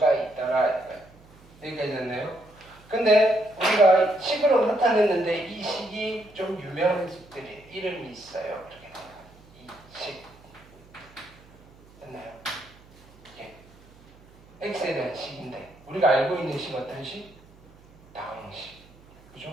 있다라. 여기까지 됐네요. 근데 우리가 식으로 나타냈는데 이 식이 좀 유명한 식들이 이름이 있어요. 이렇게 돼요. 이 식. 됐나요? 예. x에 대한 식인데 우리가 알고 있는 식 어떤 식? 다항식.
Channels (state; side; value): noise; right; hum, 26 dB below the sound